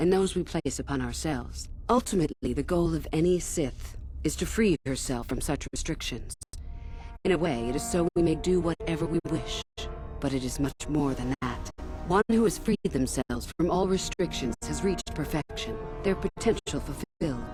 those we place upon ourselves. Ultimately, the goal of any Sith is to free herself from such restrictions. In a way, it is so we may do whatever we wish, but it is much more than that. One who has freed themselves from all restrictions has reached perfection, their potential fulfilled.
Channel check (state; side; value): identical; both; correlation 1.00